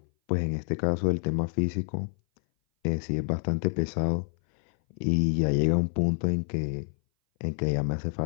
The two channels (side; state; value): right; silent; 58 dB below the other